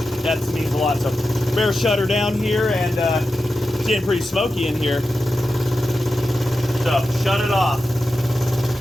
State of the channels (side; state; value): both; normal; correlation 0.91